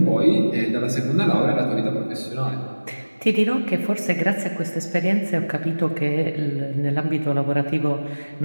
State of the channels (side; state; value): both; inverted; correlation -1.00